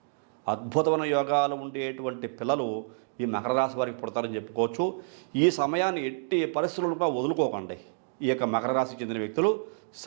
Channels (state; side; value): silent; left; digital silence